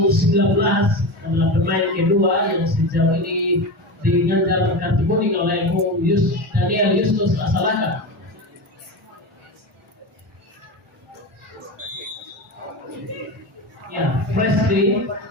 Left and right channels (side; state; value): both; normal; correlation 0.23